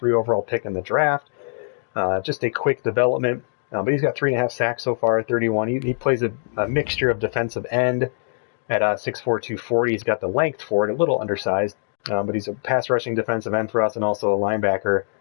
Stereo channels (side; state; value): right; silent; digital silence